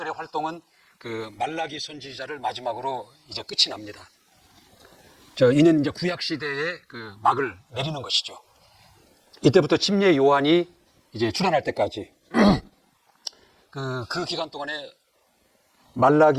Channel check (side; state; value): both; identical; correlation 1.00